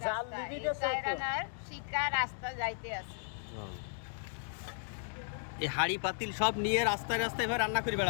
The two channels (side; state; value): right; silent; digital silence